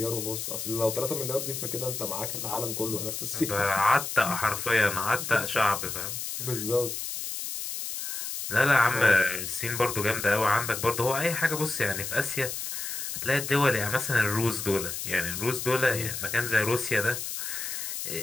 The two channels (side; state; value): left; noise; hiss, 5 dB below the sound